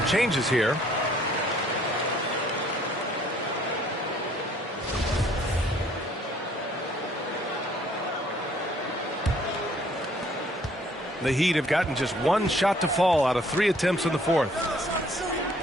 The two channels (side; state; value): both; normal; correlation 0.61